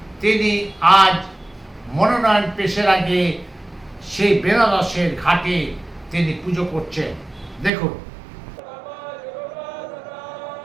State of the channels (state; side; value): drops out; left; at 7.7 s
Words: তিনি আজ মনোনয়ন পেশের আগে সেই বেনারসের ঘাটে তিনি পুজো করছেন। দেখুন।